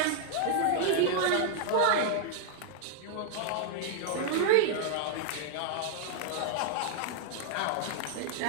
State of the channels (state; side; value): different; both; correlation 0.00